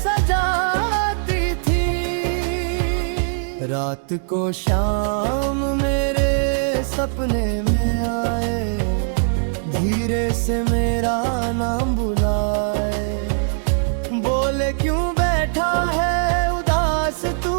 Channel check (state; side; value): silent; left; digital silence